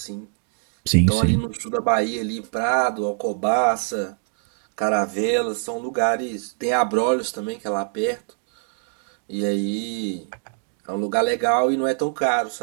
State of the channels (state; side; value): silent; left; digital silence